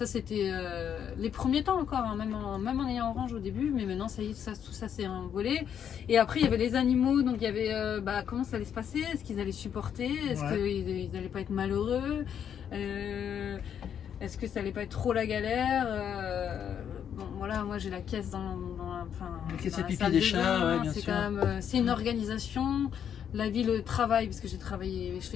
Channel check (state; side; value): quieter; right; 8.6 dB